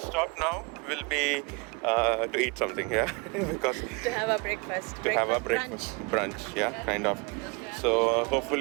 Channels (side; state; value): left; quieter; 29.9 dB